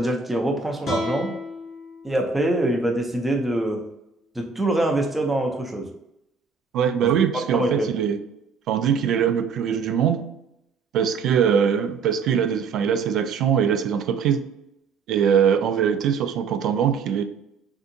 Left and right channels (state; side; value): quieter; left; 5.4 dB